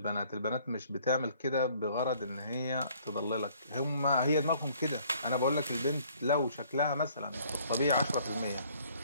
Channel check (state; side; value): inverted; both; correlation -0.59